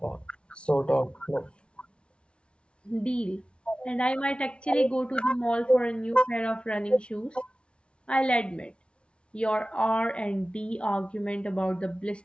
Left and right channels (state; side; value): late; right; 0.058 ms